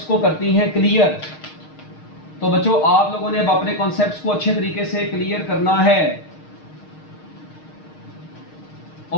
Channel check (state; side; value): late; right; 6.5 ms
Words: को करती हैं क्लियर। तो बच्चों आप लोगों ने अब अपने कॉन्सेप्ट्स को अच्छे तरीके से क्लियर करना है।